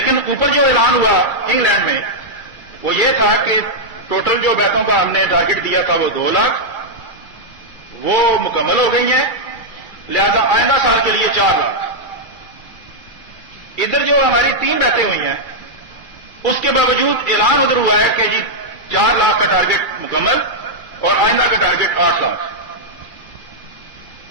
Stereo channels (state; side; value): late; right; 2.3 ms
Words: اوپر جو اعلان ہوا انگلینڈ میں وہ یہ تھا کہ ٹوٹل جو بیتوں کا ہم نے ٹارگٹ دیا تھا وہ 2 لاکھ، وہ مکمل ہو گئی ہیں، لہذا آئندہ سال کے لیے 4 لاکھ. ادھر جو ہماری 3 بیتیں ہوئی ہیں اس کے باوجود اعلان ادھر ہوا ہے کہ جی 4 لاکھ کا ٹارگٹ مکمل اور آئندہ کا ٹارگٹ 8 لاکھ.